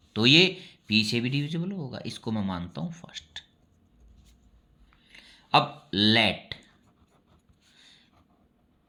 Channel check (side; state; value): both; identical; correlation 1.00